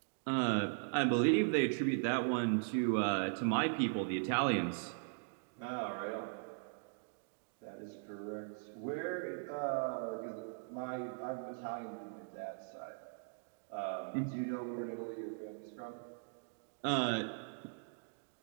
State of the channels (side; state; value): left; silent; digital silence